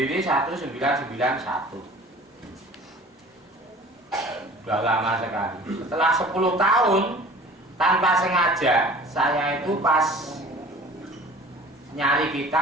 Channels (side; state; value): both; normal; correlation 0.45